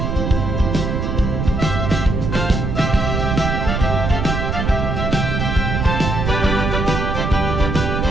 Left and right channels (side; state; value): right; noise; rumble, 1 dB below the sound